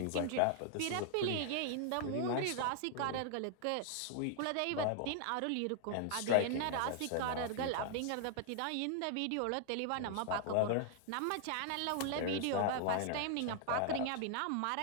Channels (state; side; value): different; both; correlation 0.00